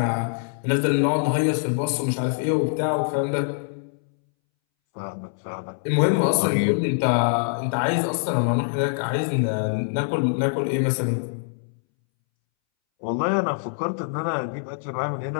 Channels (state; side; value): silent; right; 62 dB below the other